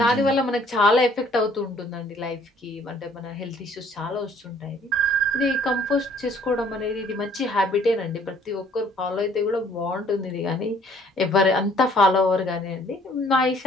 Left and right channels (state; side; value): normal; both; correlation 0.60